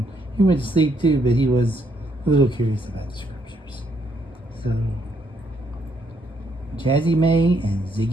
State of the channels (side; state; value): both; normal; correlation 0.73